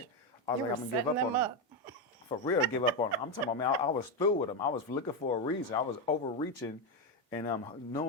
I was You like, were I'm gonna give up setting on them them. up. For real, give up on them. I'm talking about, man, I was through with them. I was looking for a reason. I was overreaching and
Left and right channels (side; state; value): both; normal; correlation 0.08